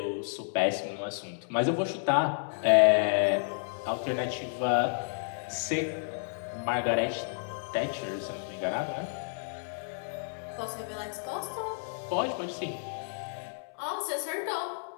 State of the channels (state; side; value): silent; right; 57 dB below the other